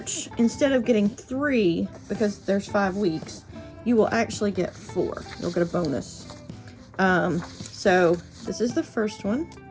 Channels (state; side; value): identical; both; correlation 1.00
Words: instead of getting 3, because there's 5 weeks, you will actually get 4. You'll get a bonus. So this is the first one,